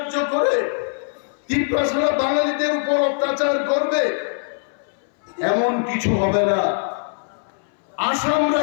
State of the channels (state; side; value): silent; right; 60 dB below the other